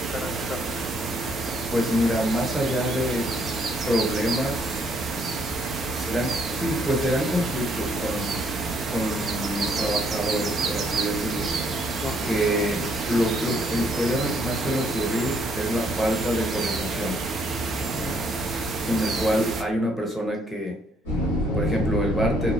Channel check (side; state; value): both; normal; correlation 0.68